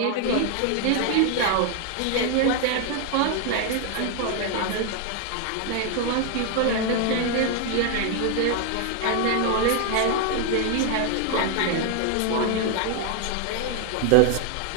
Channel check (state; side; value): different; both; correlation 0.01